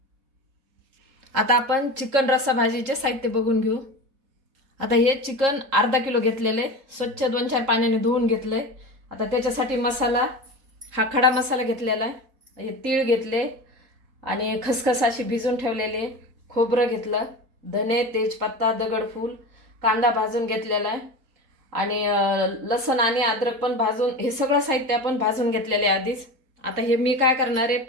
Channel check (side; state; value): left; late; 3.7 ms